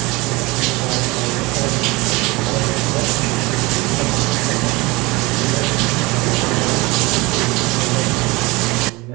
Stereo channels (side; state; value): left; quieter; 23.6 dB